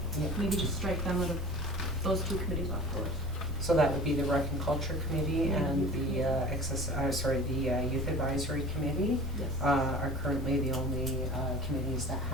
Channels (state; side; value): normal; both; correlation 0.40